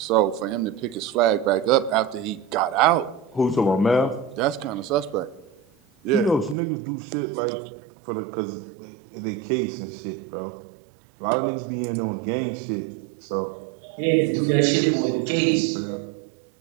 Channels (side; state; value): left; drops out; at 6.6 s